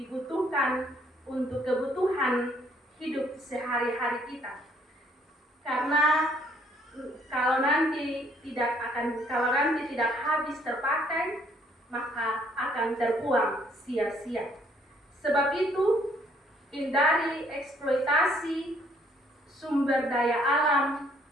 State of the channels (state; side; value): normal; both; correlation 0.65